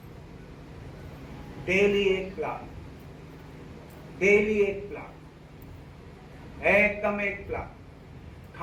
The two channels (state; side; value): identical; both; correlation 1.00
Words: डेली एक प्लान, डेली एक प्लान, एकदम एक प्लान।